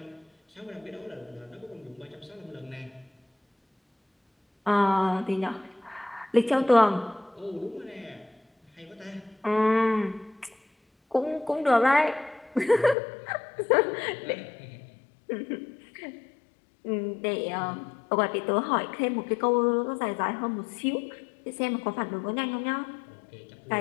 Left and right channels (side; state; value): right; drops out; at 13.0 s